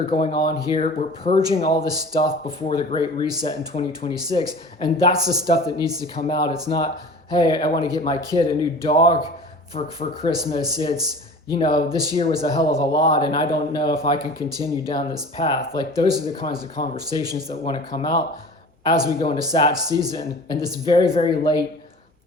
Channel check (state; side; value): normal; both; correlation 0.40